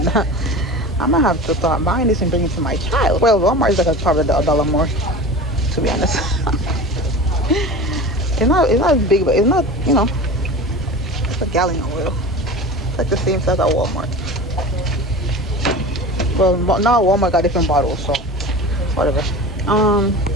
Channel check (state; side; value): normal; both; correlation 0.34